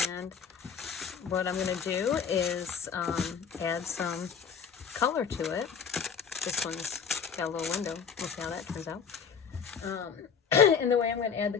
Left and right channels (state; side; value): quieter; right; 6.7 dB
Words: And what I'm going to do is add some color to it. This one's got a little window. Look how that turns out. And the way I'm going to add the